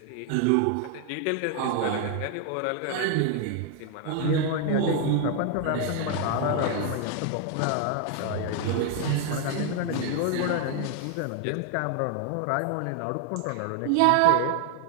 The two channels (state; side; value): different; both; correlation 0.00